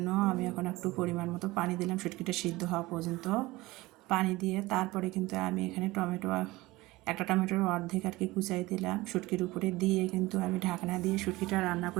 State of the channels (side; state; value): left; quieter; 20.1 dB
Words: আমি এখন একটু পরিমাণ মতো পানি দিলাম শুটকিটা সিদ্ধ হওয়া পর্যন্ত। পানি দিয়ে তারপরে কিন্তু আমি এখানে একটা টমেটোর অর্ধেক আর কি কুচাই দিলাম শুটকির উপরে দিয়ে, কিন্তু আমি ঢাকনা দিয়ে শুটকিটা রান্না